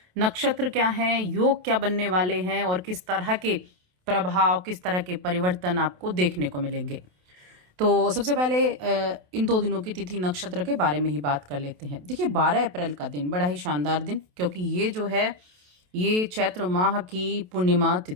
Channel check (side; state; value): left; late; 28 ms